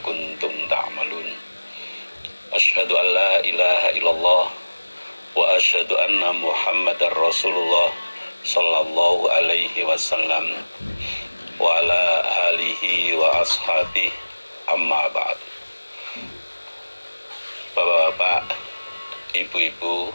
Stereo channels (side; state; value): both; inverted; correlation -1.00